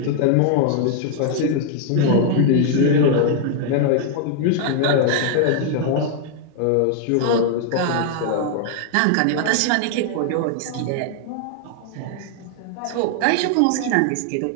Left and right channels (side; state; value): both; different; correlation 0.00